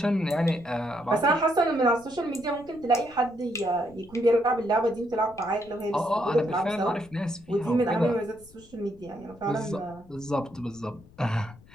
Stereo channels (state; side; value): noise; left; rumble, 24 dB below the sound